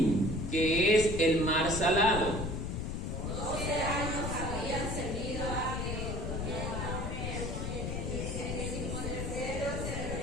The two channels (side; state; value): left; noise; rumble, 3 dB below the sound